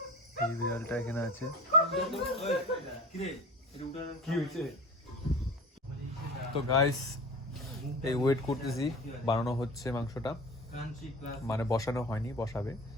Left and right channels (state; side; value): normal; both; correlation 0.35